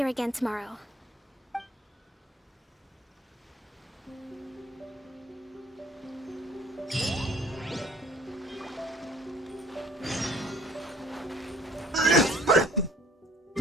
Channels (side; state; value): both; normal; correlation 0.55